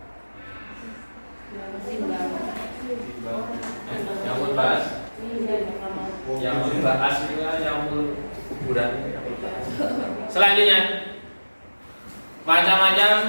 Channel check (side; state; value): both; inverted; correlation -1.00